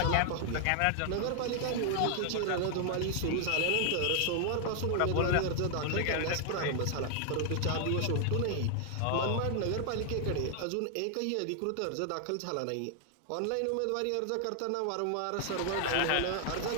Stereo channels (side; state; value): both; different; correlation 0.00